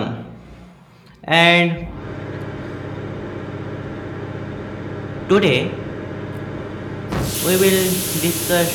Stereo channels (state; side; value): identical; both; correlation 1.00